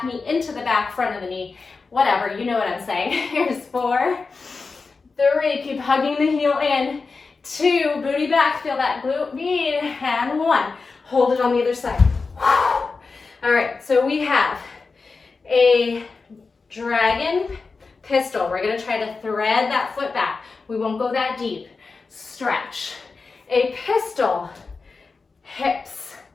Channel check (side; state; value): right; quieter; 4.4 dB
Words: knee into the back front of the knee. Whatever, you know what I'm saying. Here's 4, 3, keep hugging the heel in. 2, booty back, feel that glute med, and 1. Hold it on the other side. All right, so we have a dragon pistol. We're gonna try to thread that foot back. We won't go that deep. Stretch. A pistol, hips